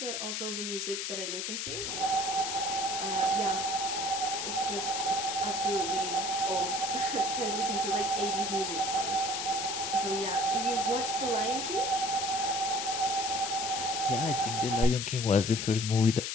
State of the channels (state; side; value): noise; left; hiss, 3 dB below the sound